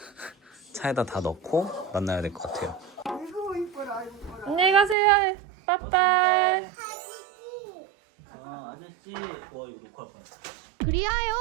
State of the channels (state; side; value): drops out; left; at 5.0 s